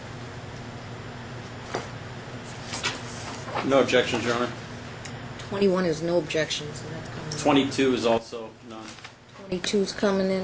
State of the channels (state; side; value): identical; both; correlation 1.00